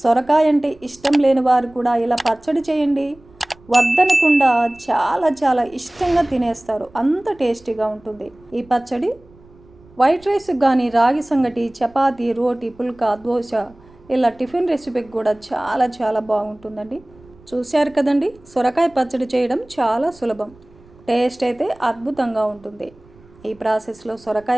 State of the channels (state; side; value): noise; right; rumble, 27 dB below the sound